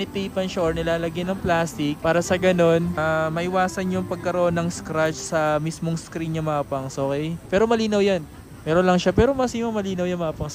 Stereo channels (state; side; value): identical; both; correlation 1.00